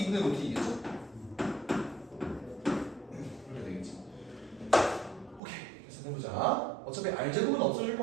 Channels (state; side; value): drops out; left; at 5.4 s